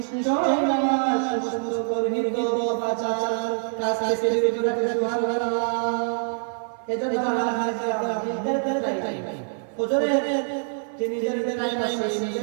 সুন্দর গর্হিত পাচার কাজ থেকে বিরত রাখে সুবহানাল্লাহ এজন্য আমরা নিজেদের চাই ফজরের যে নিজেদের টাইম আছে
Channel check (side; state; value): left; silent; 57 dB below the other